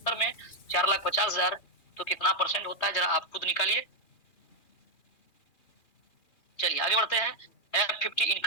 में 4,50,000 तो कितना परसेंट होता है, जरा आप खुद निकालिए। चलिए आगे बढ़ते हैं। F50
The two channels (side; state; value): right; late; 2.4 ms